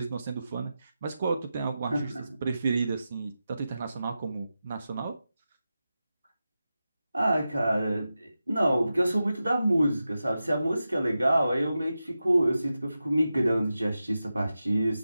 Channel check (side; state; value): both; inverted; correlation -0.92